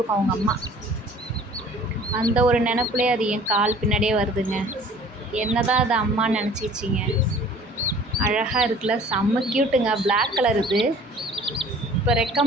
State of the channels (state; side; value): normal; both; correlation 0.50